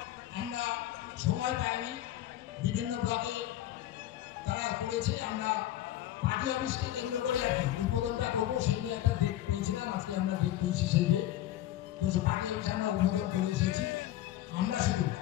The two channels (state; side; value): quieter; right; 13.7 dB